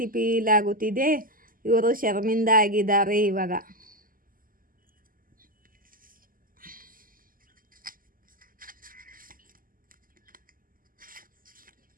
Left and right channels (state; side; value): late; left; 0.41 ms